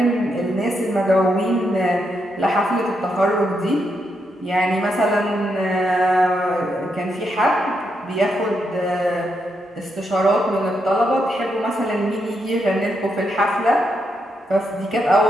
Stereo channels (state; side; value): normal; both; correlation 0.81